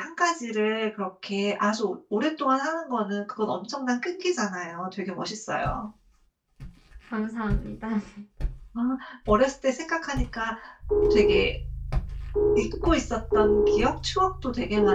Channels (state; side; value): identical; both; correlation 1.00